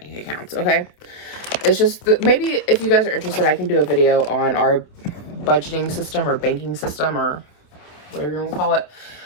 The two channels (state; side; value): late; right; 27 ms